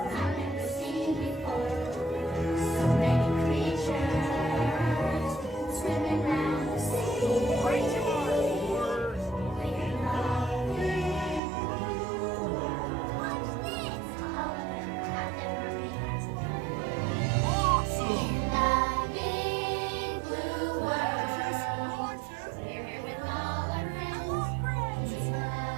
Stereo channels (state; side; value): drops out; left; at 11.4 s